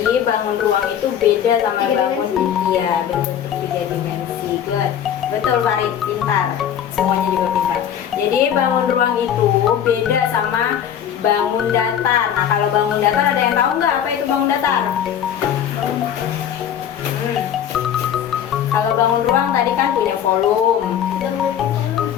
bangun ruang itu beda sama bangun ya berbentuk 3 dimensi. Good. Betul Farid, pintar. Semuanya juga pintar. Jadi bangun ruang itu beda sama bangun datar. Nah, kalau bangun datar ada yang tahu nggak apa itu bangun datar? Kalau bangun ruang tadi kan punya volume.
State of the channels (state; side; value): quieter; right; 9.4 dB